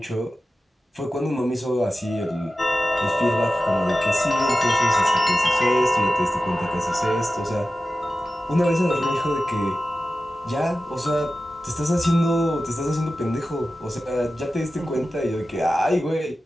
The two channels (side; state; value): both; normal; correlation 0.94